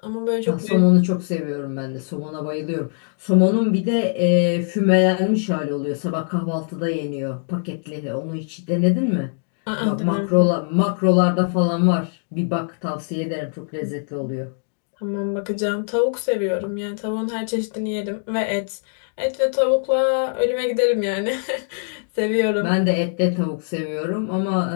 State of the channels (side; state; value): right; silent; digital silence